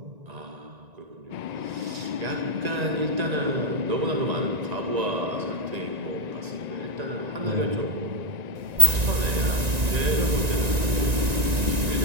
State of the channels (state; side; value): late; left; 1.9 ms